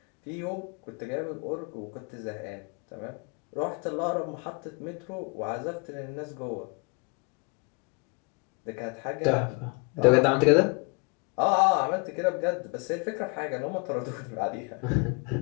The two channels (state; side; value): quieter; right; 31.3 dB